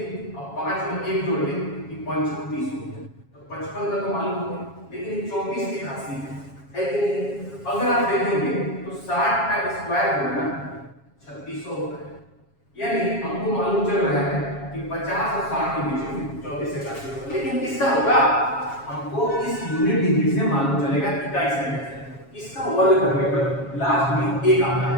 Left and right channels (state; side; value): late; right; 7.3 ms